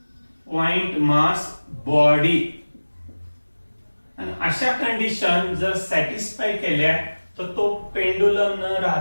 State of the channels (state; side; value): inverted; both; correlation -1.00